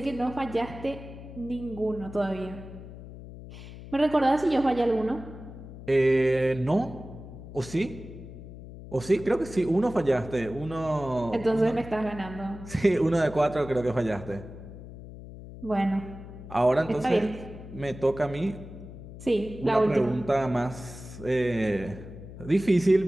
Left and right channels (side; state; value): left; noise; hum, 14 dB below the sound